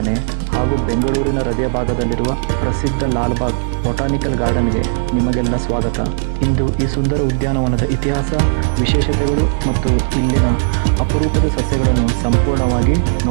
ಹಾಗೂ ಬೆಂಗಳೂರಿನ ಹೃದಯ ಭಾಗದಲ್ಲಿರುವ ಪ್ರಸಿದ್ಧ ಲಾಲ್ಬಾಗ್ ಬೊಟಾನಿಕಲ್ ಗಾರ್ಡನ್ಗೆ ನಿಮಗೆಲ್ಲ ಸ್ವಾಗತ. ಇಂದು ಈ ಸುಂದರ ಉದ್ಯಾನವನದ ಇತಿಹಾಸ, ವಿಶೇಷತೆಗಳು ಮತ್ತು ಇಲ್ಲಿನ ಅಪರೂಪದ ಸಸ್ಯಗಳನ್ನು ಸಂಪೂರ್ಣವಾಗಿ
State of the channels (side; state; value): left; silent; 57 dB below the other